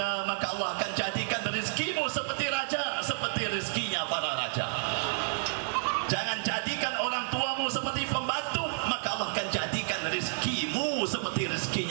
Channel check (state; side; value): silent; left; digital silence